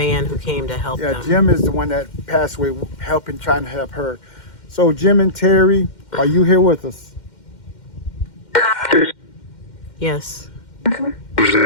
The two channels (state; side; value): late; right; 2.1 ms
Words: who came to help them. Jim is the one that passed away, trying to help her. So, Jim and Terry, are you here with us? Yes.